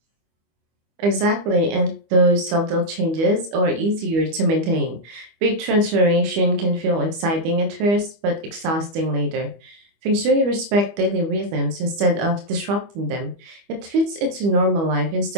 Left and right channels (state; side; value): late; left; 25 ms